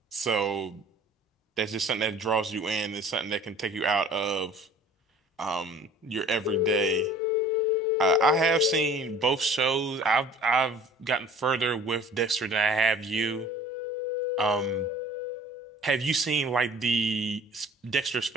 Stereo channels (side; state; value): both; normal; correlation 0.48